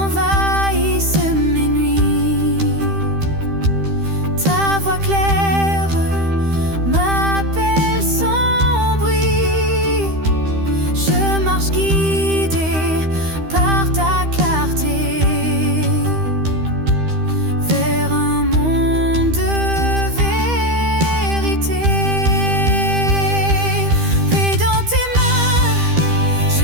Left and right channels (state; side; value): late; left; 13 ms